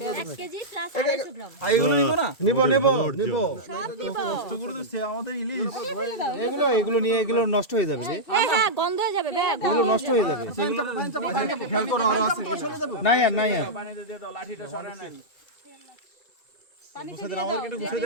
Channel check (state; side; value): late; right; 2.3 ms